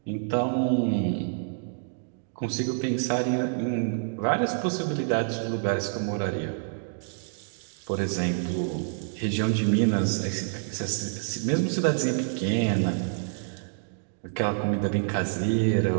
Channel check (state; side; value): silent; left; digital silence